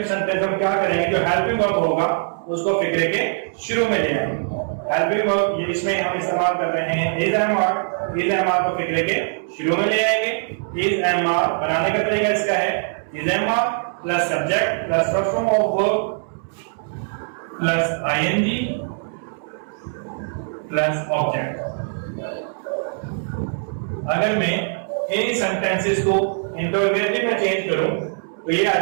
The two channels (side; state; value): left; silent; 64 dB below the other